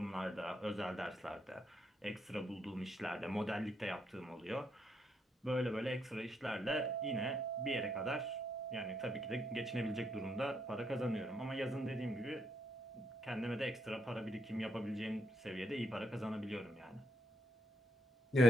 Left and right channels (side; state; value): both; normal; correlation 0.77